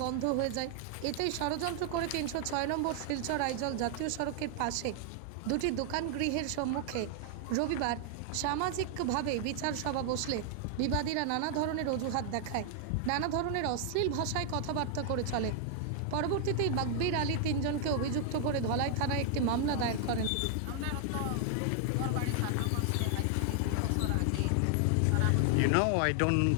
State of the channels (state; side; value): different; both; correlation 0.00